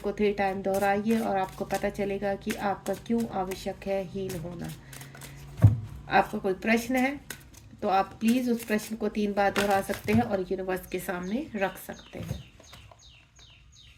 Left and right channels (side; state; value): both; identical; correlation 1.00